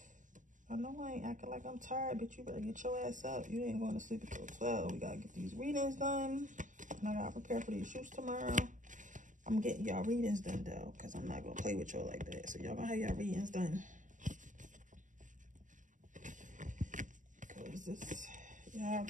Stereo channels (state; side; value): late; left; 0.37 ms